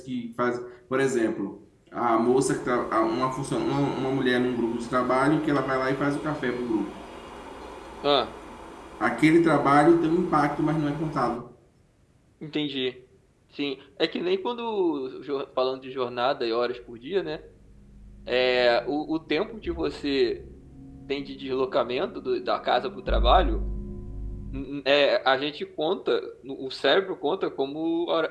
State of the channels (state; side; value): identical; both; correlation 1.00